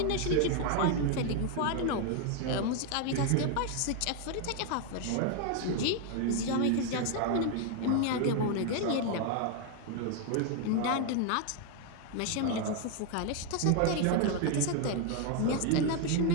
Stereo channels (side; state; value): both; different; correlation 0.01